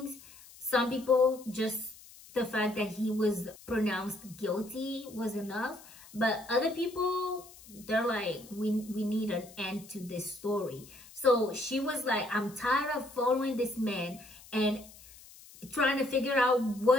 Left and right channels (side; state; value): left; noise; hiss, 21 dB below the sound